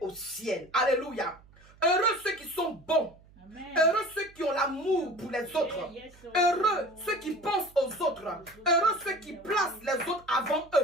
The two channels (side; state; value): right; noise; hum, 26 dB below the sound